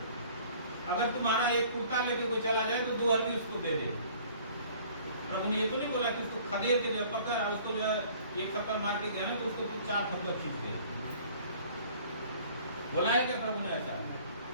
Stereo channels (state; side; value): inverted; both; correlation -0.53